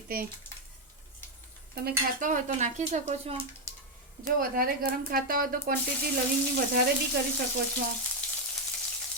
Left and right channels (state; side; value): normal; both; correlation 0.02